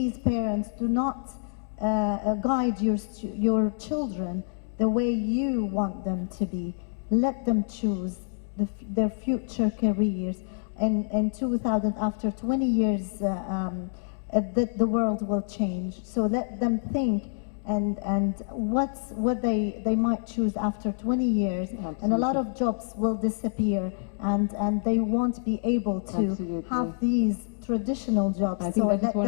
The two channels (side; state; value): right; silent; digital silence